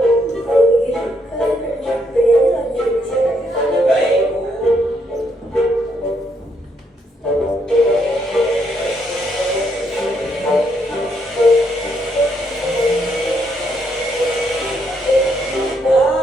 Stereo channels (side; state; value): both; normal; correlation 0.74